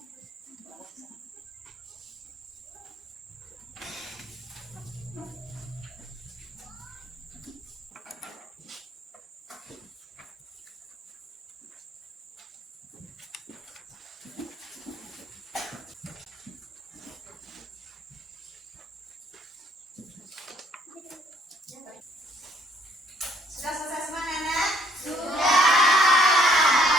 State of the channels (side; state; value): both; normal; correlation 0.64